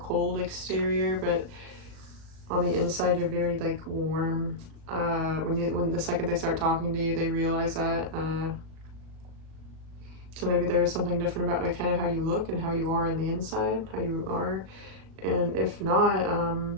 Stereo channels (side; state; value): left; late; 37 ms